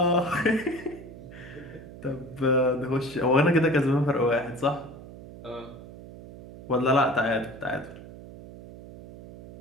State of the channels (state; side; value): noise; right; hum, 16 dB below the sound